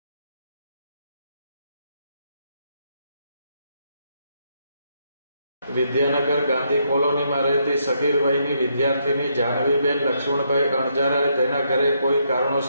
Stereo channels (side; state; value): both; inverted; correlation -0.76